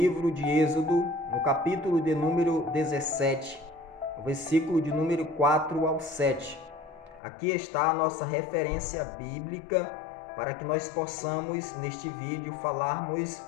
de Êxodo, no capítulo de número 17, o versículo de número 4 ao 7. Aqui está a nossa referência bíblica para que nós possamos, neste vídeo, falarmos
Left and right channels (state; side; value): drops out; right; at 7.2 s